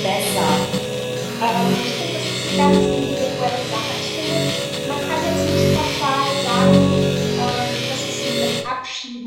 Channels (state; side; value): identical; both; correlation 1.00